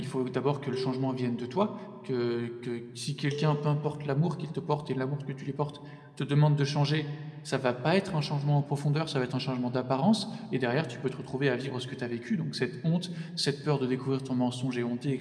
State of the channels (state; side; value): identical; both; correlation 1.00